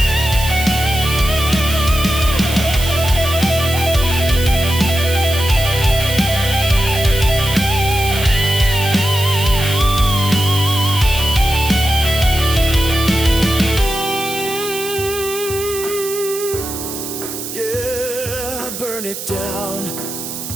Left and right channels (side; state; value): right; noise; hiss, 8 dB below the sound